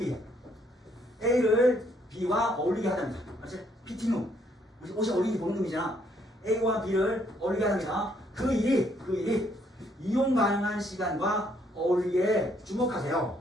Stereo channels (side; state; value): both; normal; correlation 0.69